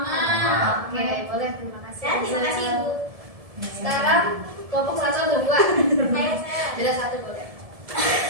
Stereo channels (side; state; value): left; late; 1.7 ms